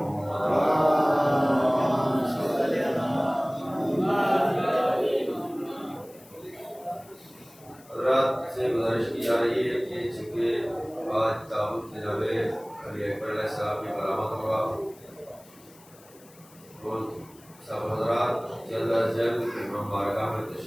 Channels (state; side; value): noise; left; hiss, 25 dB below the sound